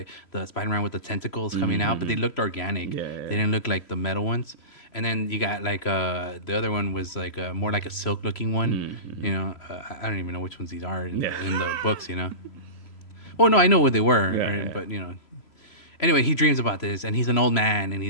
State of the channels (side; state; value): right; late; 3.0 ms